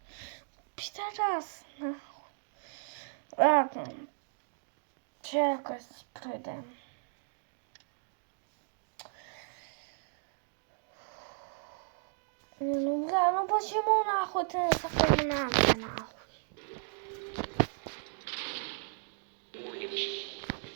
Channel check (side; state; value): left; silent; digital silence